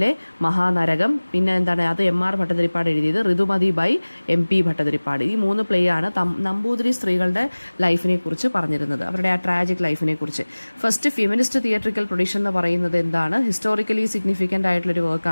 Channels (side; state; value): both; inverted; correlation -1.00